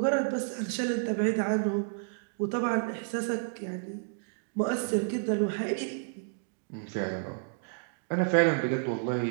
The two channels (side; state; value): left; silent; digital silence